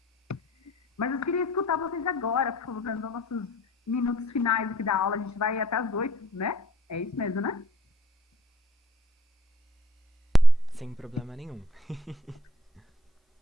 Mas eu queria escutar vocês agora, por favor, nos nossos minutos finais aqui da aula. A gente vai até as 8, né? É isso mesmo, né? Sem problema nenhum.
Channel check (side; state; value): both; normal; correlation 0.59